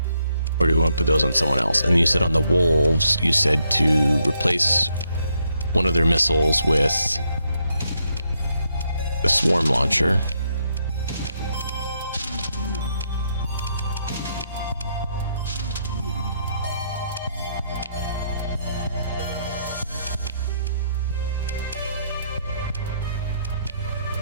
Or do we want to put those on someone else? And you said on the wolves, you said to replace one of their missiles with the swarm launcher.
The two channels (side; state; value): both; inverted; correlation -0.76